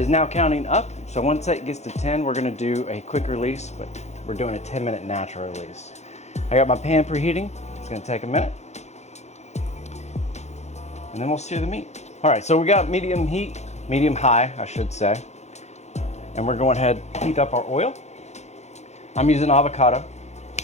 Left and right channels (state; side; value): late; right; 0.32 ms